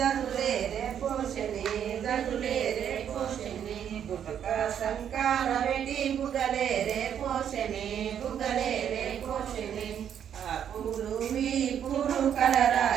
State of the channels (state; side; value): quieter; left; 9.0 dB